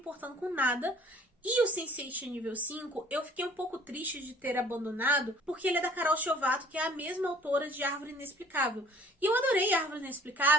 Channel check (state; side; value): normal; both; correlation 0.53